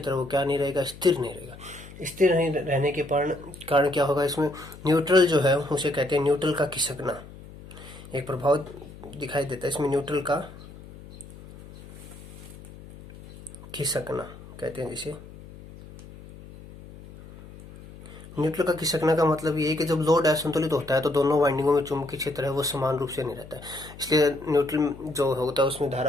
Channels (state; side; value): noise; left; hum, 17 dB below the sound